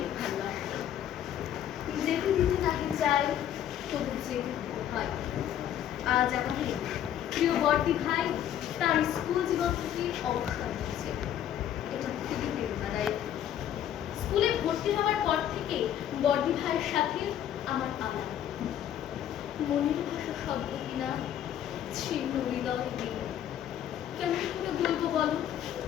ভালোবাসা। যেতে দিতে নাকি চাই তবু যেতে হয়। আজ আমাদের প্রিয় বর্দি ভাই তার স্কুল জীবন থেকে অবসর নিচ্ছে। এটা খুবই প্রেরণাদায়ক। স্কুলে ভর্তি হওয়ার পর থেকে বর্দি ভাইয়ের সাথে আমার আলাপ। মনের ভাষা শব্দ কিনা ছিন্ন হৃদয় দিন। কেমন করে বলবো বলো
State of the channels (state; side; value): quieter; right; 10.5 dB